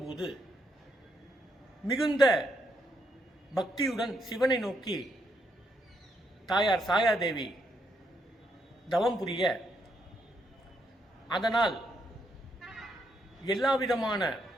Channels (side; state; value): both; normal; correlation 0.77